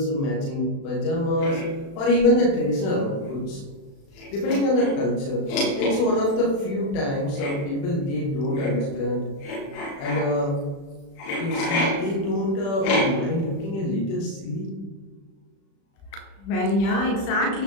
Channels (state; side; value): late; right; 36 ms